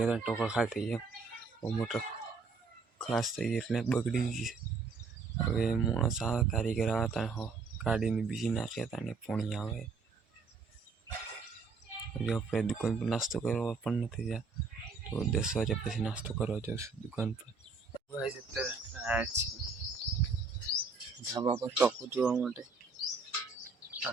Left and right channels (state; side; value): quieter; left; 4.4 dB